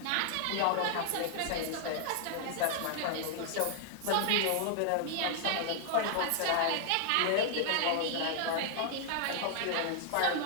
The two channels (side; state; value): both; different; correlation 0.00